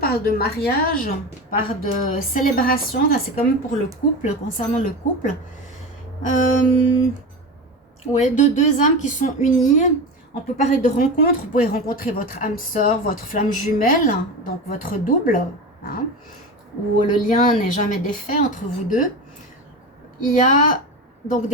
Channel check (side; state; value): both; normal; correlation 0.25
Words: de mariage, parle de célébration. Là, c'est quand même pour le couple, concernant le couple. Ouais, de deux âmes qui sont unies. On peut parler de rencontre. Vous pouvez rencontrer votre âme sœur, votre flamme jumelle, donc votre double, hein, où le lien n'est jamais défait entre vous deux. Il y a donc